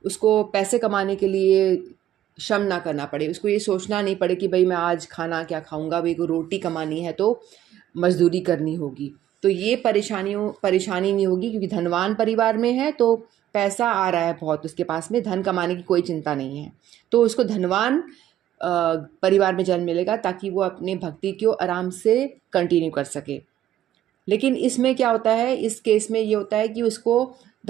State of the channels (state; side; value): quieter; left; 12.1 dB